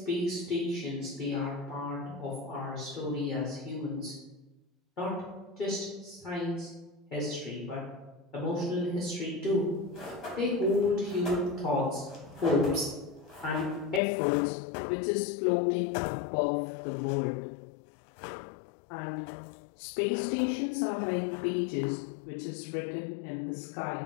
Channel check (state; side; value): drops out; right; at 14.0 s